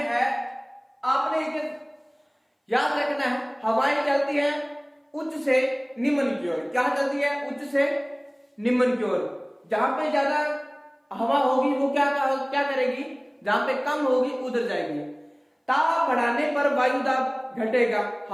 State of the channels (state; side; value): identical; both; correlation 1.00